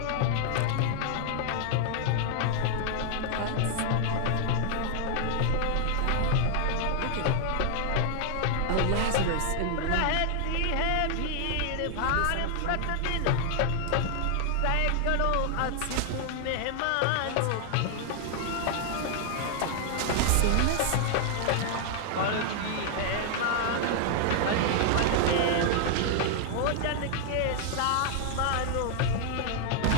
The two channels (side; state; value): both; different; correlation 0.00